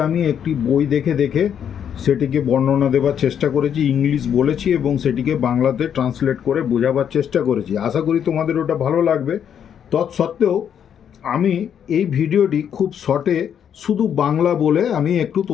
আমি একটি বই দেখে দেখে সেটিকে বর্ণনা দেওয়ার চেষ্টা করেছি, ইংলিশ বলেছি এবং সেটিকে বাংলাতে ট্রান্সলেট করে বোঝাবার চেষ্টা করেছি। আশা করি তোমাদের ওটা ভালো লাগবে। তৎসত্ত্বেও আমি এই ভিডিওটি খুব শর্টে শুধু বাংলা বলে আমি একটু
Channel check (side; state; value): right; quieter; 8.6 dB